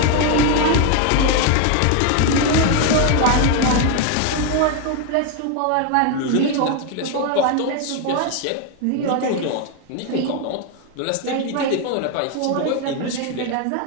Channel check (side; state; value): both; different; correlation 0.01